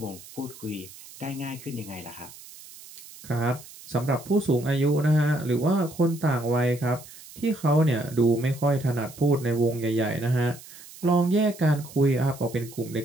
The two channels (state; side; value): noise; right; hiss, 18 dB below the sound